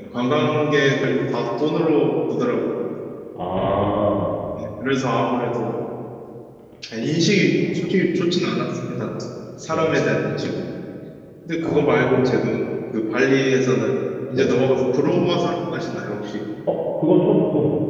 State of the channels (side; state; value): both; identical; correlation 1.00